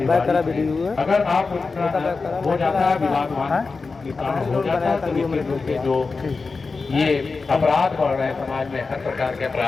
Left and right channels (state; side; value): quieter; right; 4.3 dB